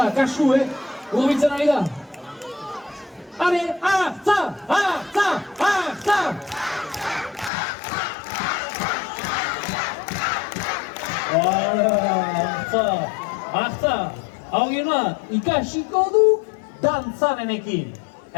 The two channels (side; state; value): right; drops out; at 7.5 s